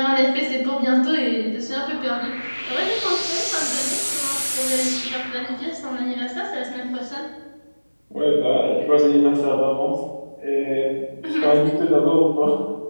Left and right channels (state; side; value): inverted; both; correlation -1.00